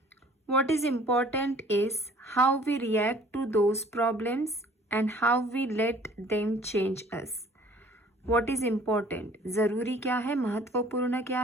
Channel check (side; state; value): both; normal; correlation 0.53